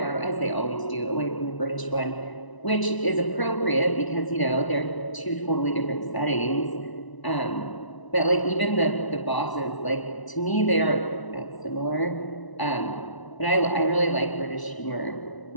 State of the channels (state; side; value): late; right; 1.0 ms